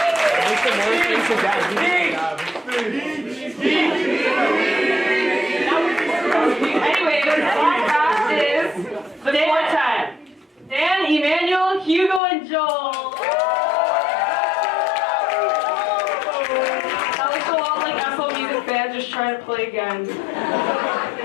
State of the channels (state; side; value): drops out; right; at 12.2 s